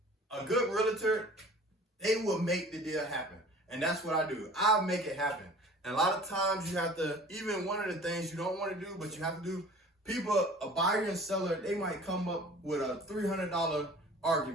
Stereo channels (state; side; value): normal; both; correlation 0.46